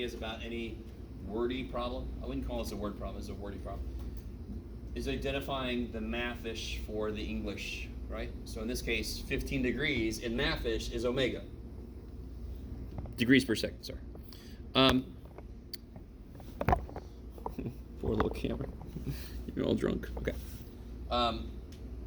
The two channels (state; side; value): identical; both; correlation 1.00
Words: about any wordy problem, I wouldn't call this a word problem, it's a wordy problem, is identifying the mathish for the English, right? So in this case, 15 degrees in mathish is omega. Degrees per second, sorry. Poor little camera. You're all drunk. Okay. All